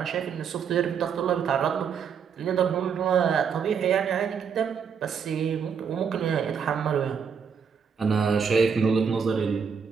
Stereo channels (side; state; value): left; quieter; 6.7 dB